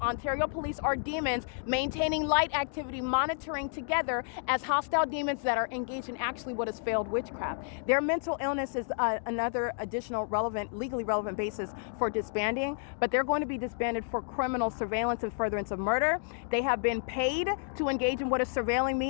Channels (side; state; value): right; silent; digital silence